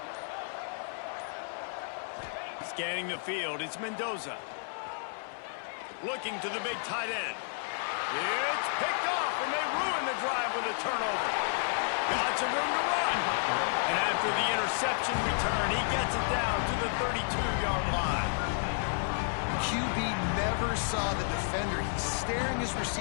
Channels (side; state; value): right; silent; 57 dB below the other